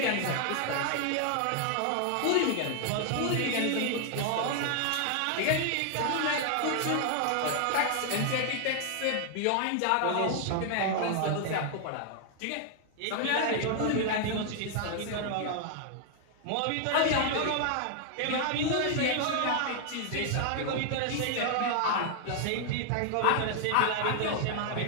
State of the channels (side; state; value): both; different; correlation 0.00